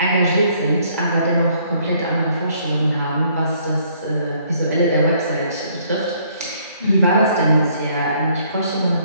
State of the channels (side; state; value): both; inverted; correlation -0.64